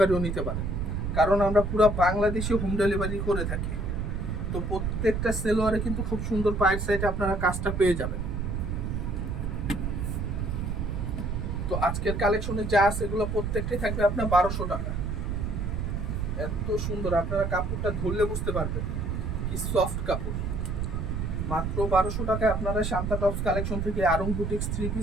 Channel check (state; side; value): noise; right; rumble, 2 dB below the sound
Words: নিতে পারেন, কারণ আমরা পুরো বাংলাদেশে হোম ডেলিভারি করে থাকি। তো প্রত্যেকটা সেলোয়ারে কিন্তু খুব সুন্দর পায়ের সাইডে আপনারা কাজটা পেয়ে যাবেন। তো আজকের কালেকশনে যা আছে এগুলো প্রত্যেকটাই থাকবে আপনার 1200 টাকা। এত সুন্দর, আপনারা কাপড়টা ধরলে বুঝতে পারবেন কি সফট কাপড়। মাত্র 1200 টাকায় আপনারা শান্তা টপস কালেকশন থেকে আরং বুটিক্স থ্রি